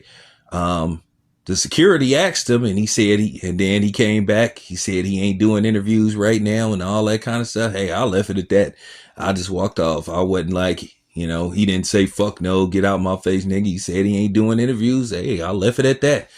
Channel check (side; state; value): both; identical; correlation 1.00